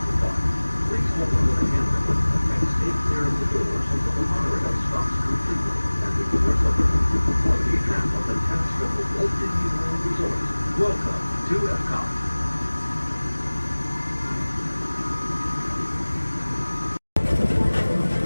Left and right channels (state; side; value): inverted; both; correlation -1.00